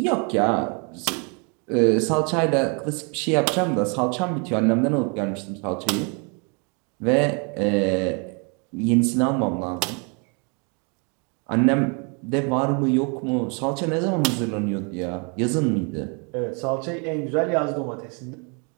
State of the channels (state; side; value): quieter; left; 34.9 dB